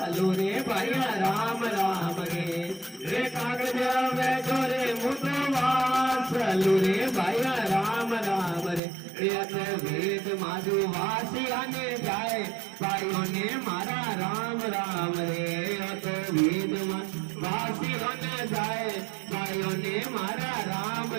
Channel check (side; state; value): left; drops out; at 8.8 s